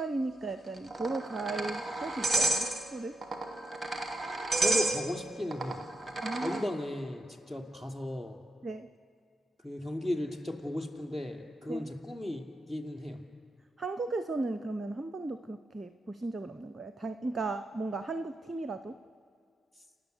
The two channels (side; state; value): both; normal; correlation 0.86